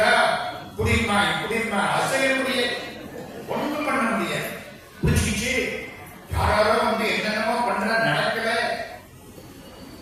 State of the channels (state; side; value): identical; both; correlation 1.00